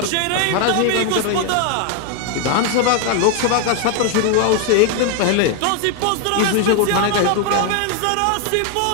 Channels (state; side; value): different; both; correlation 0.01